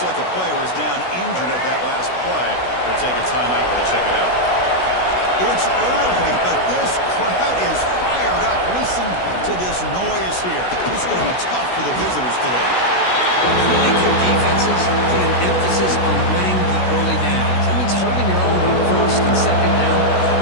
like a player is down injured at that last play. They'll take a timeout while they check it out. It's early, but this crowd is fired up. Listen to this noise here. It's going to be tough for the visitors today. Really good defenses put an emphasis on winning the early downs. That means holding your own on 1st and 2nd down.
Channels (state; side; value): late; right; 16 ms